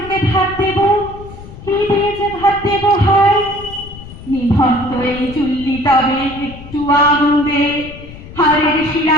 ভাত দেব, কি দিয়ে যে ভাত দেব হায়। নিভন্ত এই চুল্লি তবে একটু আগুন দে, হাড়ের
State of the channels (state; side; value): noise; left; rumble, 15 dB below the sound